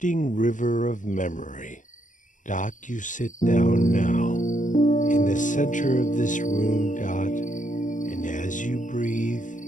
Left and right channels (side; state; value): right; late; 0.37 ms